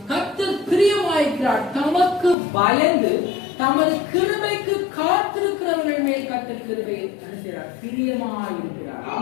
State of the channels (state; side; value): drops out; right; at 2.4 s